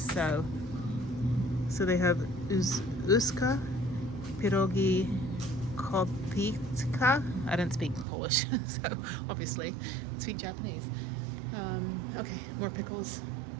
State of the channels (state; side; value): drops out; left; at 8.1 s